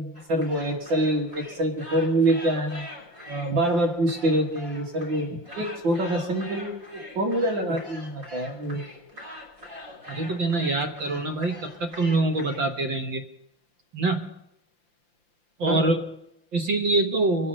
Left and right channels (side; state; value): left; late; 5.8 ms